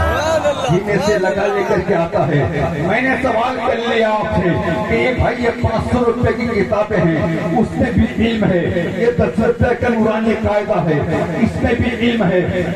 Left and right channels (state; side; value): identical; both; correlation 1.00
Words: सीने से लगा लेकर के आता है। मैंने सवाल कर लिया आपसे कि ये भाई ये 500 रुपए की किताबें हैं, उसमें भी इल्म है, ये 10 रुपए का नूरानी कायदा है, इसमें भी इल्म है,